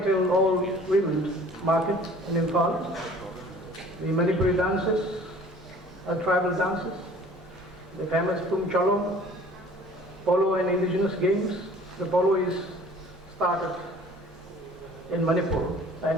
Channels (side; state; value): both; normal; correlation 0.50